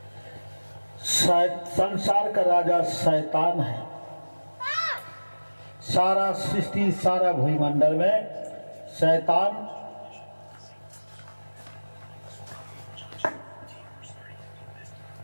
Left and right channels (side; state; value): both; inverted; correlation -1.00